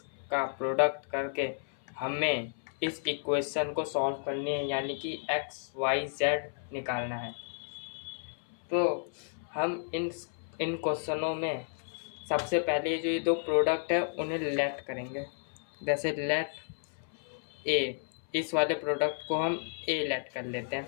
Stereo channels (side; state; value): right; silent; 56 dB below the other